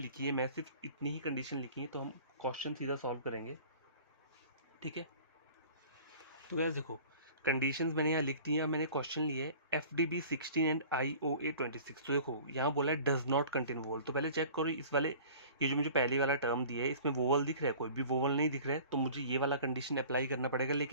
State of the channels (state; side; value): inverted; both; correlation -0.45